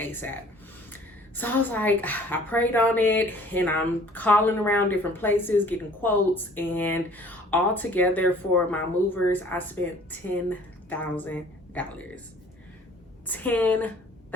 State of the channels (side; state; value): both; normal; correlation 0.52